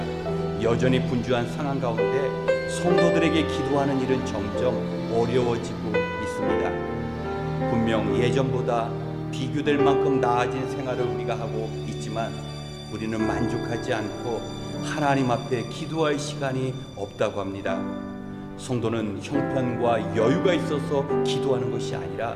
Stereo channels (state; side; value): identical; both; correlation 1.00